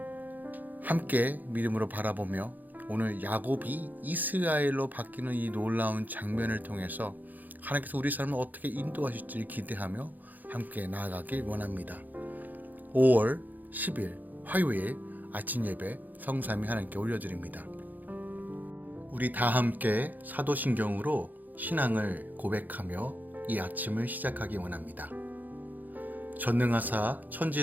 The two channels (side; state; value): left; late; 0.084 ms